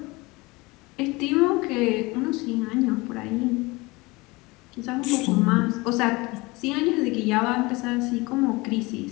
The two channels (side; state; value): right; quieter; 23.6 dB